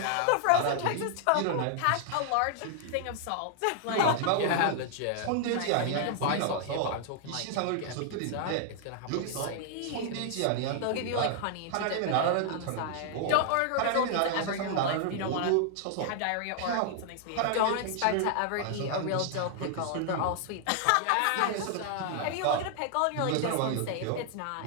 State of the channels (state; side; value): different; both; correlation -0.01